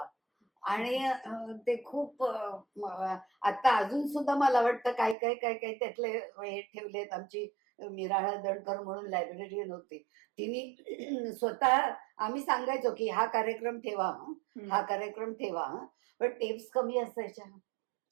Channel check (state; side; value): drops out; left; at 5.2 s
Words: आणि ते खूप आता अजून सुद्धा मला वाटतं काय काय काय काय त्यातले हे ठेवलेत. आमची मिराळा दणकर म्हणून लायब्ररीयन होती, तिने स्वतः, आम्ही सांगायचो की हा कार्यक्रम ठेवा हं, हा कार्यक्रम ठेवा हं. पण टेप्स कमी असायच्या,